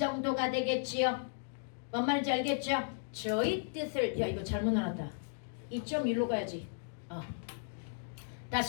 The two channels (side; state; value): right; silent; digital silence